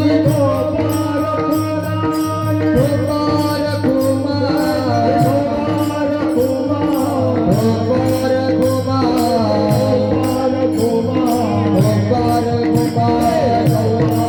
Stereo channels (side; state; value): both; identical; correlation 1.00